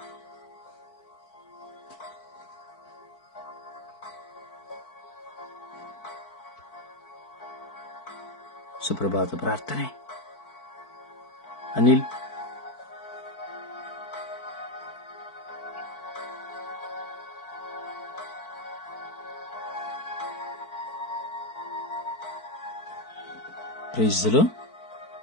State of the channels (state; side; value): late; right; 4.5 ms